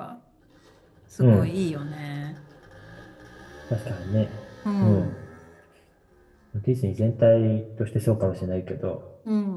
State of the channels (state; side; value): identical; both; correlation 1.00